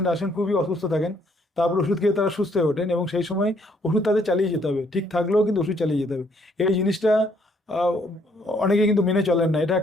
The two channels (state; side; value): normal; both; correlation 0.67